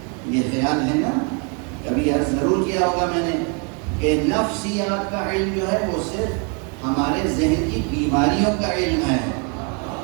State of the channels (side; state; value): left; quieter; 35.2 dB